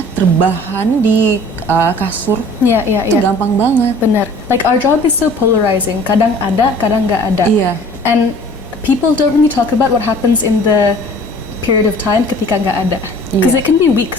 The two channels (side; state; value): both; normal; correlation 0.49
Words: terbahan di kasur. Yeah, Itu gampang banget. Bener. Like our job is so polarizing. Kadang ada, kadang nggak ada. Iya. And people don't really talk about what happens in the period of time ketika nggak ada. Because Iya. it can be